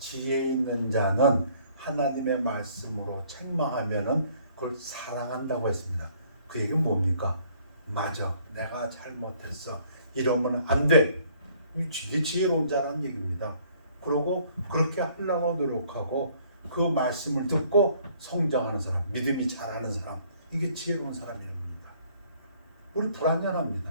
있는 자는 하나님의 말씀으로 책망하면은 그걸 사랑한다고 했습니다. 그 얘기는 뭡니까? 맞아, 내가 잘못했어. 이러면 안 돼. 이게 지혜로운 자라는 얘기입니다. 그러고 그렇게 하려고 노력하고 그 말씀을 듣고 성장하는 사람, 믿음이 자라는 사람, 이게 지혜로운 사람입니다. 우리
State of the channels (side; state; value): both; inverted; correlation -0.61